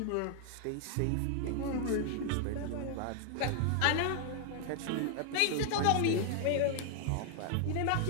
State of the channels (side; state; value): both; different; correlation 0.00